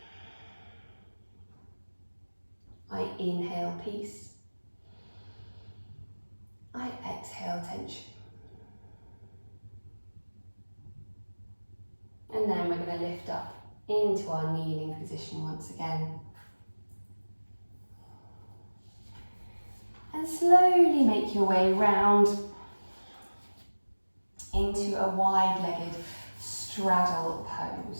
I inhale peace. I exhale tension. And then we're going to lift up into our kneeling position once again. And slowly make your way round into a wide-legged straddle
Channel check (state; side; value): inverted; both; correlation -1.00